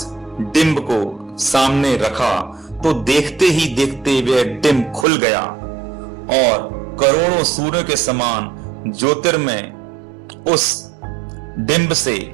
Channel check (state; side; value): drops out; left; at 5.1 s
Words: डिंब को सामने रखा तो देखते ही देखते वह डिंब खुल गया और करोड़ों सूर्यों के समान ज्योतिर्मय उस डिंब से